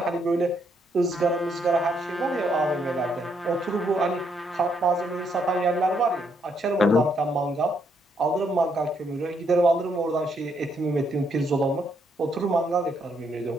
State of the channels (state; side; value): normal; both; correlation 0.74